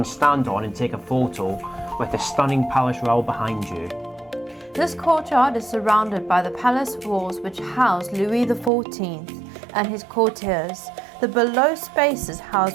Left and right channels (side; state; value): left; drops out; at 8.7 s